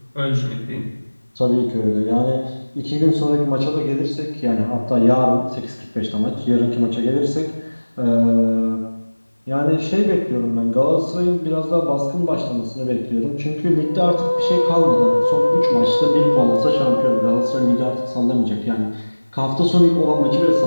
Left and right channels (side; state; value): both; inverted; correlation -1.00